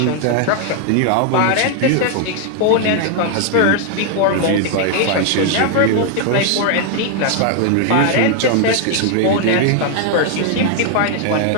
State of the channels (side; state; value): both; different; correlation 0.00